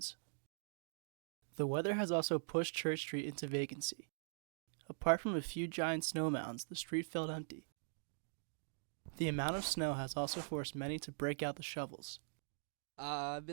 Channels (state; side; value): silent; left; digital silence